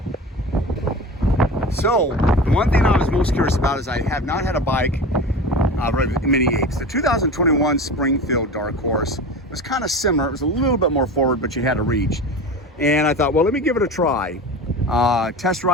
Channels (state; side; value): normal; both; correlation 0.31